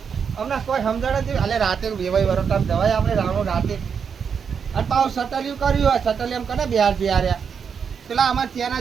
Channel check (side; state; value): left; quieter; 6.7 dB